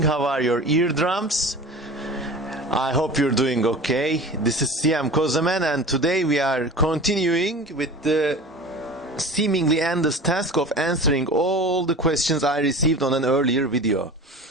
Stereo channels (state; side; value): normal; both; correlation 0.36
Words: How are your eardrums? I hope you're doing okay. This is Siyam Kozaman, and today we are continuing with the seemingly endless task of answering all the questions I received on an earlier video.